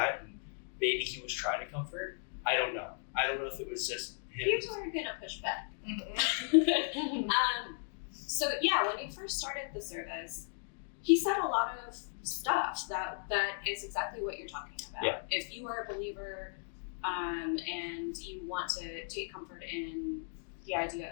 and maybe he was trying to comfort. I don't know if it was just him. Here's where we're gonna push back. Mhm. So yeah, when he first started the service, he said a lot of stuff that is exactly what you're talking about. Yeah. If you are a believer, and you want to take comfort in the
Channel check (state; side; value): silent; right; digital silence